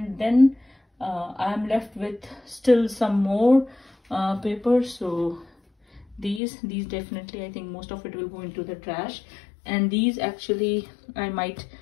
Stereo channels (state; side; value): drops out; right; at 6.4 s